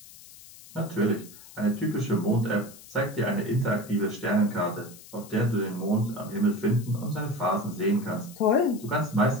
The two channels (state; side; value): noise; left; hiss, 19 dB below the sound